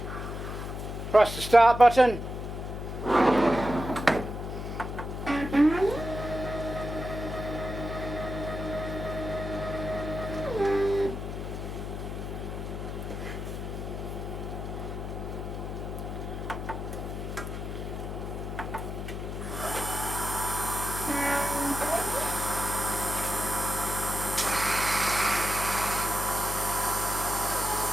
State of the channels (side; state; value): left; noise; hum, 6 dB below the sound